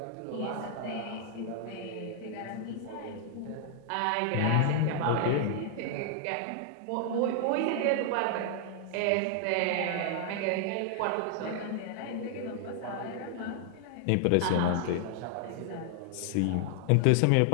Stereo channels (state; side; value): different; both; correlation 0.00